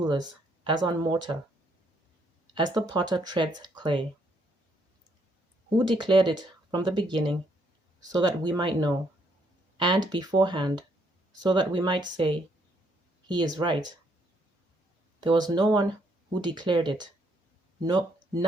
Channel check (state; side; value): normal; both; correlation 0.71